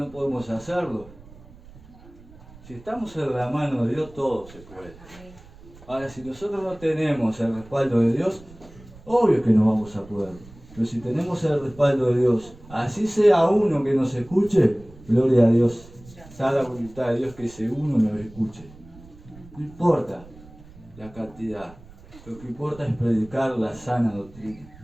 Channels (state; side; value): noise; right; rumble, 21 dB below the sound